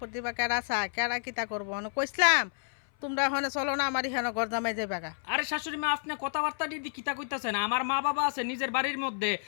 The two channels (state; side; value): silent; right; 56 dB below the other